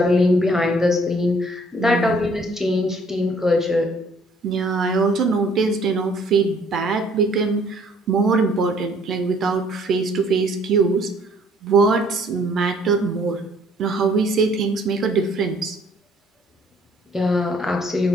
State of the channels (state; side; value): normal; both; correlation 0.60